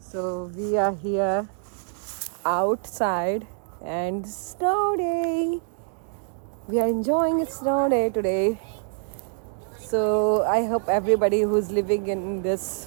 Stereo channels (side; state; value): left; silent; digital silence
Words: we are here outside and snow day. We are enjoying a snow day today. So I hope everybody who's living in